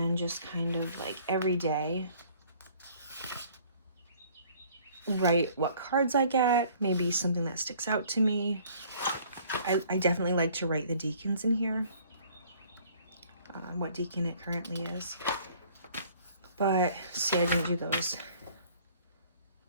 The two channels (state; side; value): inverted; both; correlation -0.56